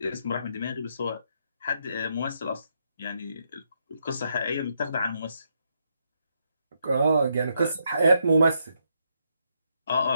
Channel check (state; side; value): inverted; both; correlation -0.78